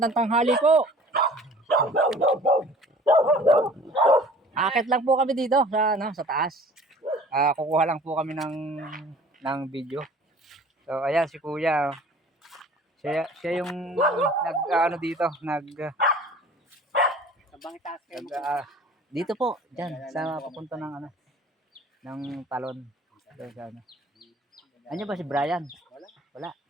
tanghali po. Akit lang po kami dito sa taas. Kukuha lang po kami ng video. So ayan si kuya. Siya yung dito, dito po, diyan sa papunta ng talon. Ano ba si Brian? Wala.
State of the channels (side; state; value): both; normal; correlation 0.48